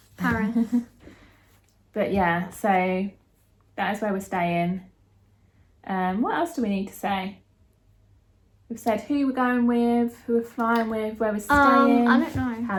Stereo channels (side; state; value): both; identical; correlation 1.00